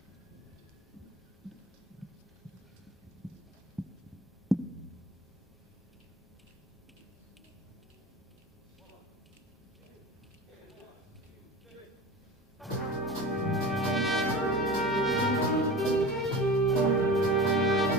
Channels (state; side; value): normal; both; correlation 0.33